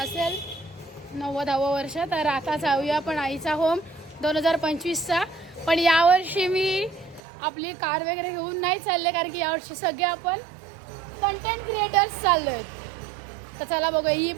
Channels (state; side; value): drops out; left; at 7.2 s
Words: 90वे वर्ष. तर आता जाऊया पण आईचा होम 2025चा. पण यावर्षी मी आपली कार वगैरे घेऊन नाही चालले कारण की यावर्षी सगळे आपण कंटेंट क्रिएटर्स चाललोय. तर चला बघू. ही